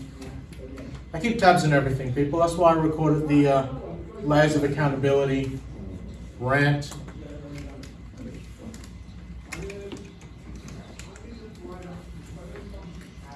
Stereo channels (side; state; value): both; identical; correlation 1.00